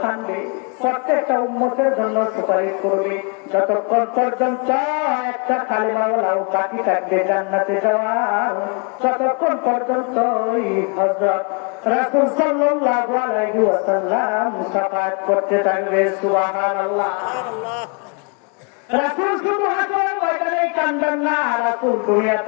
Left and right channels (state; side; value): quieter; right; 36.0 dB